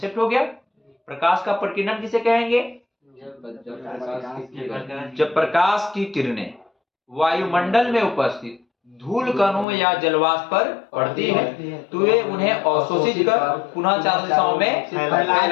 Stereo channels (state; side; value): drops out; right; at 9.7 s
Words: हो गया। प्रकाश का प्रकीर्णन किसे कहेंगे? जब प्रकाश की किरणें वायुमंडल में उपस्थित धूल कणों या जलवाष्प पर पड़ती है तो वे उन्हें अवशोषित कर पुनः चारों दिशाओं में